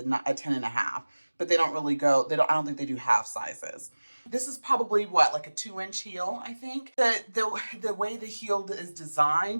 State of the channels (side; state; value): both; inverted; correlation -1.00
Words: 10.5, but they don't really go, I don't think they do half sizes. This is probably like a 2-inch heel, I think. The way the heel is